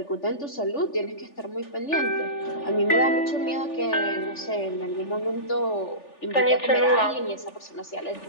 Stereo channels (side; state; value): right; late; 3.4 ms